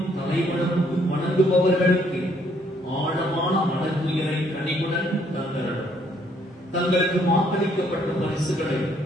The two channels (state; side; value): normal; both; correlation 0.67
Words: தலைவனுக்கு வணங்குபவர்களுக்கு ஆழமான மனத்துயரை கனிவுடன் தந்தரணும். தங்களுக்கு வாக்களிக்கப்பட்ட பரிசுகளை